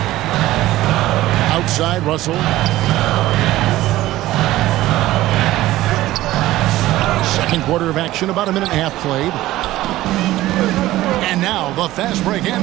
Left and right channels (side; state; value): left; quieter; 16.0 dB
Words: Outside, Russell. Second quarter of action, about a minute and a half played. And now the fast break,